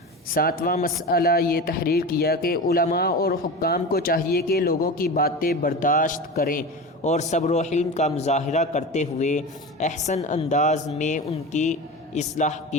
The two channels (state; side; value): normal; both; correlation 0.28